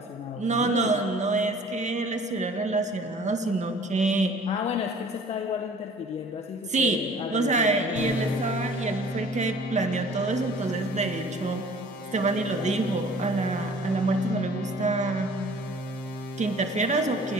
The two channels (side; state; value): both; normal; correlation 0.50